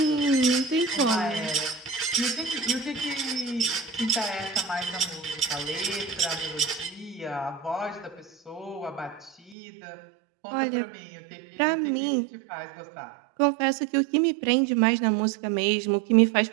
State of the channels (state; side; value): drops out; left; at 9.6 s